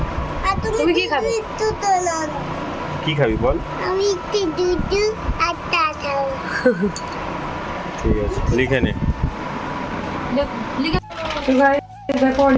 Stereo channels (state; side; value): identical; both; correlation 1.00